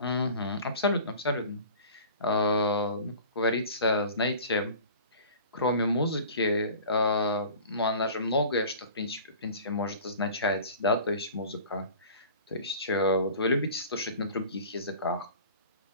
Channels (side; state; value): both; inverted; correlation -0.42